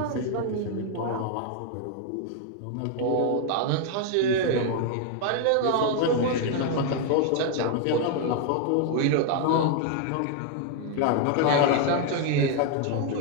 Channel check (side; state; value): both; different; correlation 0.00